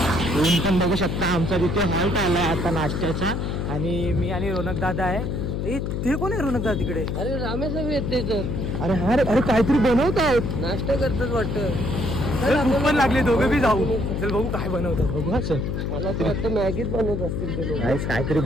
ऊन पण बघू शकता. आमचा तिथे हॉल्ट आलाय आता नाश्त्याचा आणि मी आणि रोनक दादा आहे. ते कोण आहे रोनक दादा तिकडे? अरे रामेश येते तर. अरे हा, अरे काहीतरी बनवत आहेत, नाश्ता करतात वाटतं. भूक पण लागली, दोघं बी जाऊ. चल बघू काय बनवतात, बघू. असं मला असं वाटतं मॅगीच बनवत असतील ते लोक. काहीतरी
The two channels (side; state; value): left; noise; hum, 2 dB below the sound